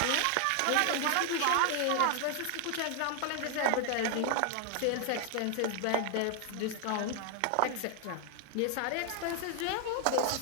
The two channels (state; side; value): different; both; correlation 0.00